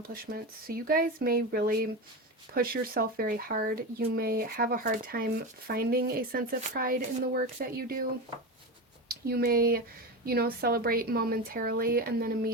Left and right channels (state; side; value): normal; both; correlation 0.21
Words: So you guys may really push yourself very hard. You may have a hard time finding a sense of pride in the work that you do. You may, celebrate momentarily and then